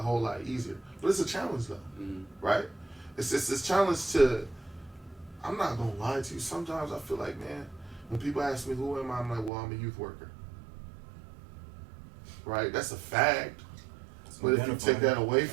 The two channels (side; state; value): left; drops out; at 9.5 s